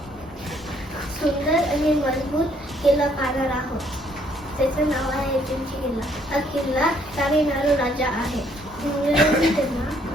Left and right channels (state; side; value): normal; both; correlation 0.66